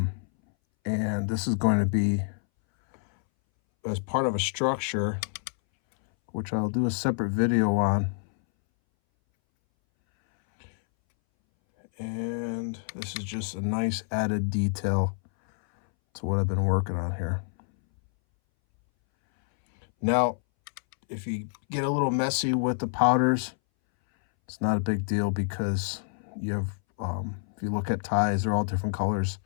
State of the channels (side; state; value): right; silent; 60 dB below the other